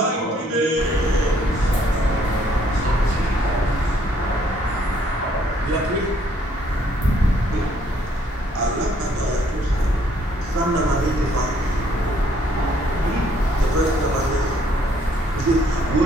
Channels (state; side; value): normal; both; correlation 0.66